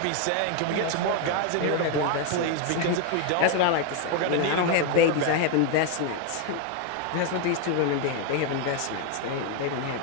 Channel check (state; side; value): different; both; correlation 0.01